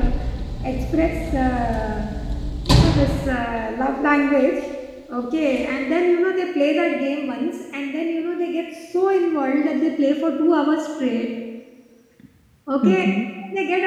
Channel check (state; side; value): identical; both; correlation 1.00